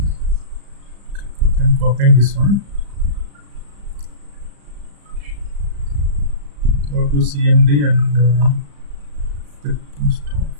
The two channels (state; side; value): late; left; 35 ms